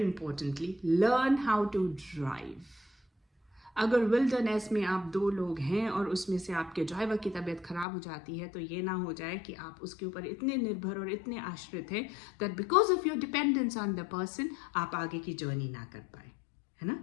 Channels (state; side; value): drops out; right; at 7.9 s